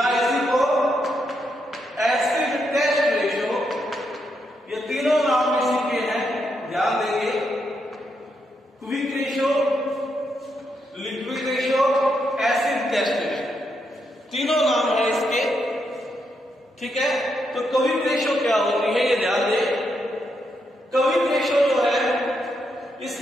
इसी को एसिड टेस्ट रेशियो, ये तीनों नाम इसी के हैं, ध्यान देंगे। Quick ratio, liquid ratio, acid test ratio, तीनों नाम है इसके, ठीक है। तो क्विक रेशियो क्या होती है ये ध्यान दें। क्विक रेशियो जो है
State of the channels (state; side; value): normal; both; correlation 0.80